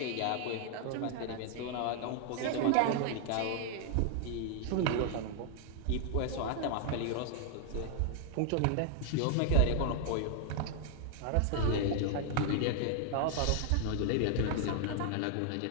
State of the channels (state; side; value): different; both; correlation 0.00